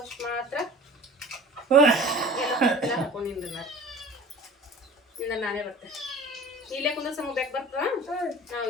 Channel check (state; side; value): normal; both; correlation 0.42